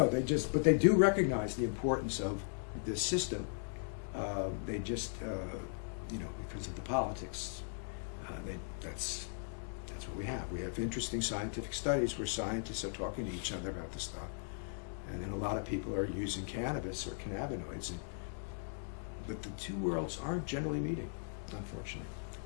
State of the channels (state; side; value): silent; right; digital silence